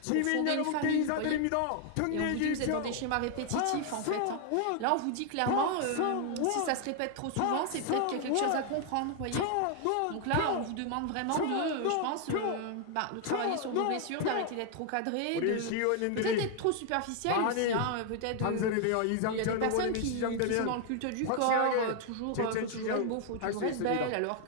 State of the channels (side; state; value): both; different; correlation 0.00